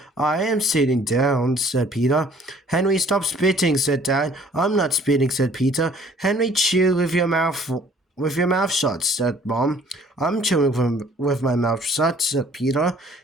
I am sitting down, said Peter. Henry, stop spitting, said Dad. I'm not spitting, said Peter. Henry, chew with your mouth shut, said Mom. I'm chewing with my mouth shut, said Peter.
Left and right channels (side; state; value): both; normal; correlation 0.56